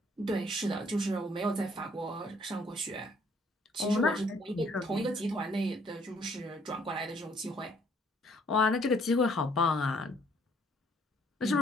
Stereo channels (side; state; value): both; normal; correlation 0.64